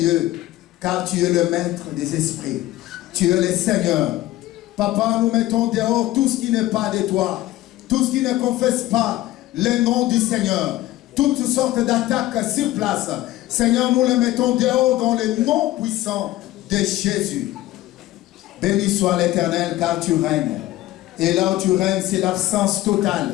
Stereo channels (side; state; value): right; quieter; 16.0 dB